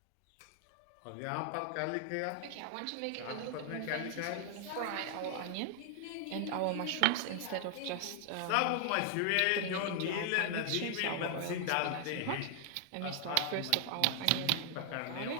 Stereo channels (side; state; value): both; different; correlation 0.00